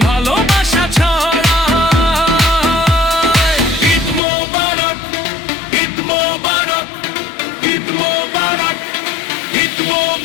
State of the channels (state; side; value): drops out; right; at 4.2 s